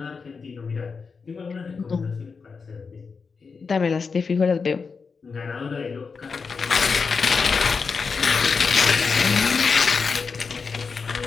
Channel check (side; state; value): right; quieter; 5.1 dB